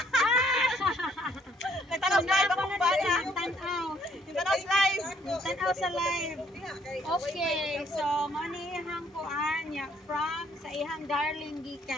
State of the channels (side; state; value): both; normal; correlation 0.65